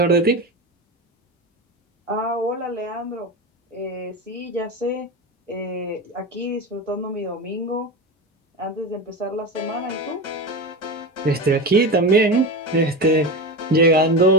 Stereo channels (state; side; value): normal; both; correlation 0.22